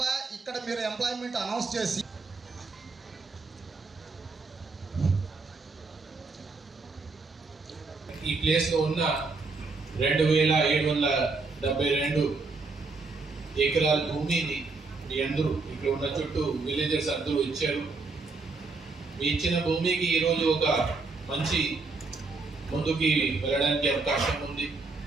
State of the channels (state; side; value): quieter; left; 4.0 dB